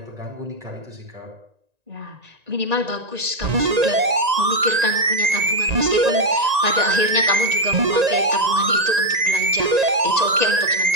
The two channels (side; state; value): left; late; 1.9 ms